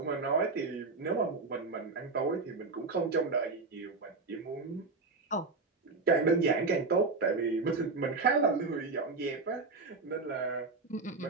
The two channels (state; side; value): quieter; left; 3.9 dB